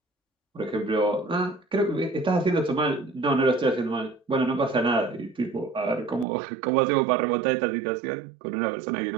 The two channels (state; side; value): drops out; left; at 6.2 s